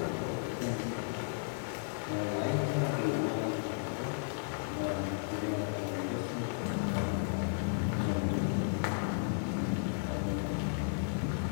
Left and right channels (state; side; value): silent; right; digital silence